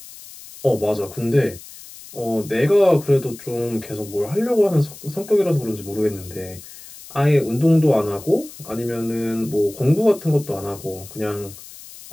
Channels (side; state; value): left; noise; hiss, 17 dB below the sound